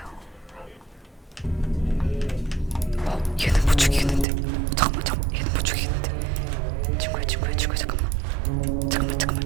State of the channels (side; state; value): left; drops out; at 4.2 s